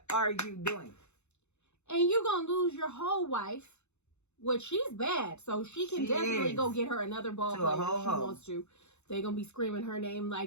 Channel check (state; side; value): late; right; 0.82 ms